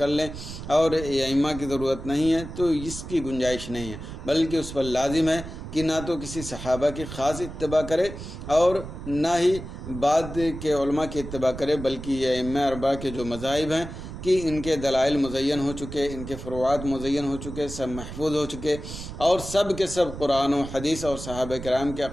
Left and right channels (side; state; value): right; noise; rumble, 10 dB below the sound